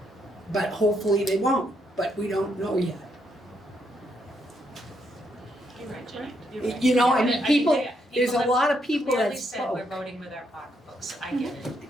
But hopefully they won't, but we don't know yet. You're right, Jenny. You're right. You know, I Yeah, mean, people, there's there's a lot of people clearly that said we're spoke. voting with our pocketbooks. I get it.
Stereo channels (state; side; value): normal; both; correlation 0.76